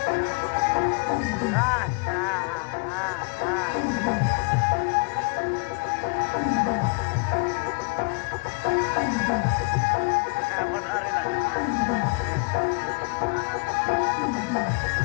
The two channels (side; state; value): right; quieter; 31.0 dB